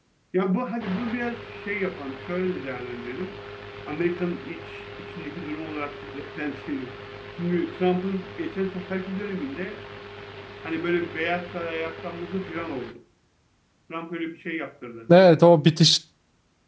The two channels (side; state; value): both; identical; correlation 1.00